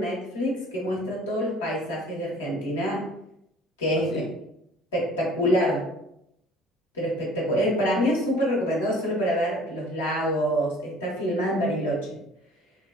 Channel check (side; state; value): both; normal; correlation 0.50